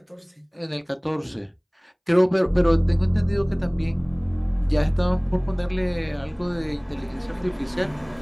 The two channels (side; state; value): both; identical; correlation 1.00